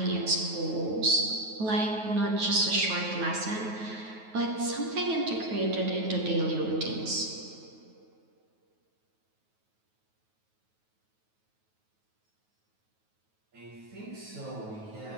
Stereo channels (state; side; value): late; left; 9.3 ms